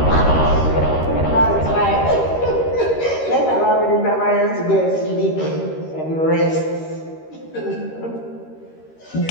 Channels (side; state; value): right; late; 13 ms